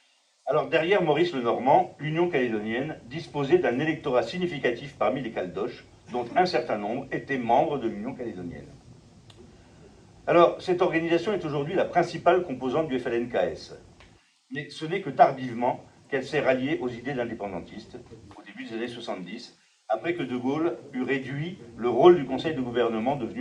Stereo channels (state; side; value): identical; both; correlation 1.00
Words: Alors derrière Maurice Lenormand, l'Union calédonienne disposait d'un électorat significatif parmi les Caldoches, dont un certain nombre étaient membres de l'Union calédonienne. Alors, cette organisation est aujourd'hui la principale composante du FLNKS. Mais ce n'est que tardivement qu'elle s'est ralliée aux idées d'indépendantistes, au début des années 70, après que De Gaulle eut réduit le rôle du Conseil de gouvernement